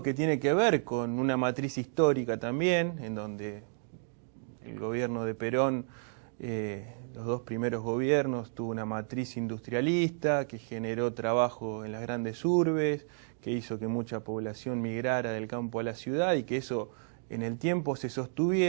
que tiene que ver con una matriz histórica también, en donde el gobierno de Perón, los dos primeros gobiernos, tuvo una matriz industrialista que generó trabajo en las grandes urbes, que hizo que mucha población migrara del campo a la ciudad y que eso en el tiempo se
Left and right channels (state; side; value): silent; left; digital silence